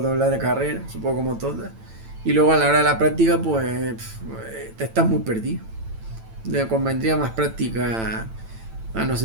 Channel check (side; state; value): left; late; 9.0 ms